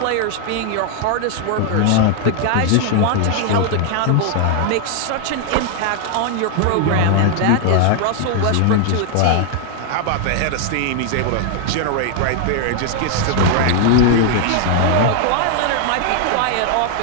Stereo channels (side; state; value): both; different; correlation 0.00